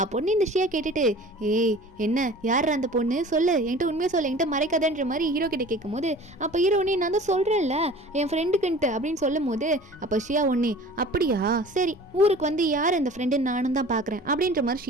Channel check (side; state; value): both; normal; correlation 0.44